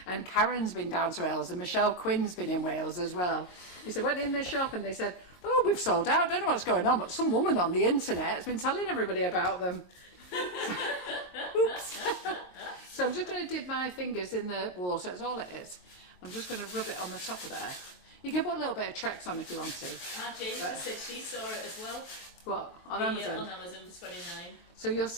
and Karen's been down to Wales, and Michelle Quinn's been in Wales as well. He said, went in the shop and they said, oh, we've sold out, don't know what's going on, but some woman on the internet has been telling everybody about them. Oops. So I'm just going to dip my fingers in the water, that's all it is. I'm just going to rub it on the top of there. You can put a little bit of Trex on if you want to. Jennifer said she saw it as well. What? On Amazon? On Amazon for $29. So you'll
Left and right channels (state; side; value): late; right; 22 ms